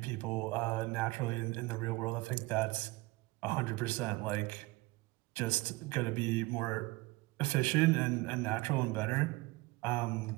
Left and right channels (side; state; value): left; quieter; 22.3 dB